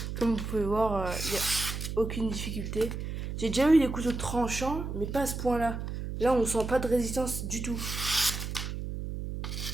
comme vous pouvez voir, il n'y a aucune difficulté. J'ai déjà eu des couteaux tranchants, mais pas à ce point-là. Là, on sent pas de résistance du tout.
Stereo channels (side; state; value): right; noise; hum, 5 dB below the sound